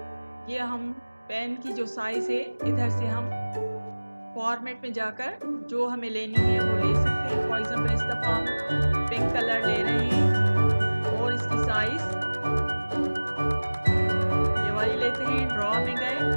ये हम पेन की जो साइज है इधर से हम फॉर्मेट में जाकर जो हमें लेनी है वो ले सकते हैं। फॉर एग्जाम्पल इस दफा हम पिंक कलर ले रहे हैं और इसकी साइज ये वाली लेते हैं। ड्रॉ में गए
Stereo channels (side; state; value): both; inverted; correlation -1.00